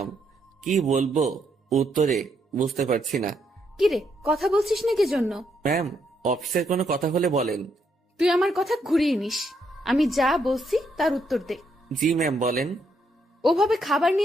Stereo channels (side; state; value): both; normal; correlation 0.76